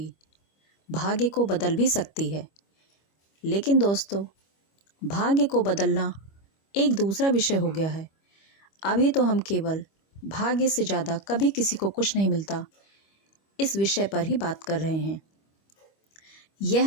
भाग्य को बदल भी सकती है। लेकिन दोस्तों, भाग्य को बदलना एक दूसरा विषय हो गया है। अभी तो हम केवल भाग्य से ज़्यादा कभी किसी को कुछ नहीं मिलता इस विषय पर ही बात कर रहे हैं। यह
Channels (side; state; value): right; late; 25 ms